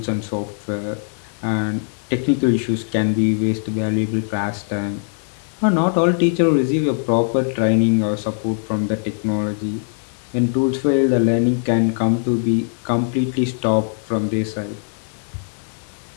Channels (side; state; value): right; silent; digital silence